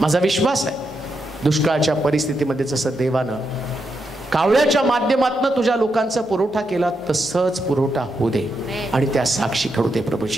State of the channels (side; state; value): both; normal; correlation 0.83